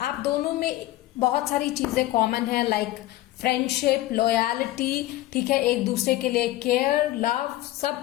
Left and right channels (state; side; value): quieter; right; 16.1 dB